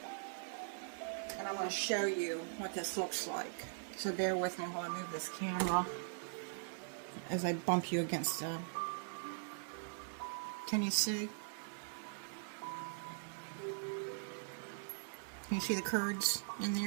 and I'm going to show you what this looks like. So bear with me while I move this camera as I bump you against can you see? Can you see the curds in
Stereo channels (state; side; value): silent; left; digital silence